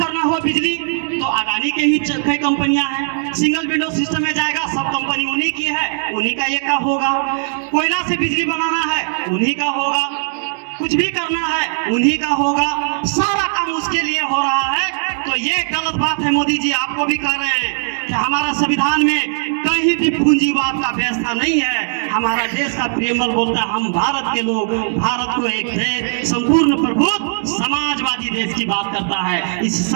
हो बिजली, तो अदानी के ही कई कंपनियां हैं। सिंगल विंडो सिस्टम में जाएगा, सब कंपनी उन्हीं की है, उन्हीं का एक का होगा। कोयला से बिजली बनाना है, उन्हीं का होगा। कुछ भी करना है, उन्हीं का होगा। सारा काम उसके लिए हो रहा है। तो ये गलत बात है। मोदी जी आपको भी कह रहे हैं कि हमारा संविधान में कहीं भी पूंजीवाद का व्यवस्था नहीं है। हमारा देश का प्रेमल बोलता है हम भारत के लोग, भारत को एक देश, संपूर्ण प्रभुत्व समाजवादी देश की बात करता है। इस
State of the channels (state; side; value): silent; left; digital silence